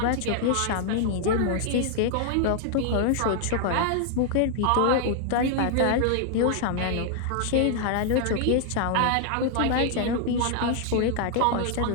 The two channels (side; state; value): both; different; correlation 0.00